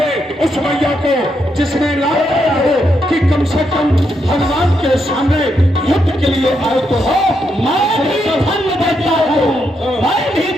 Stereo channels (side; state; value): both; normal; correlation 0.80